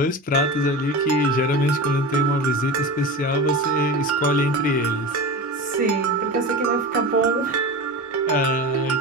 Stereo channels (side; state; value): both; normal; correlation 0.28